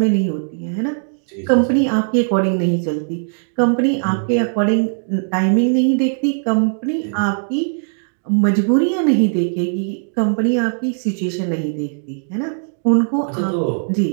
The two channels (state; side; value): silent; left; digital silence